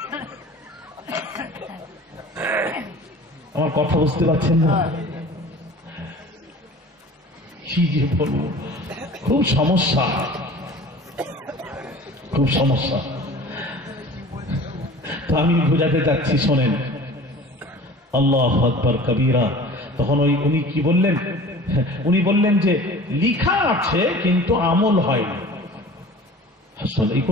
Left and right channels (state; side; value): normal; both; correlation 0.42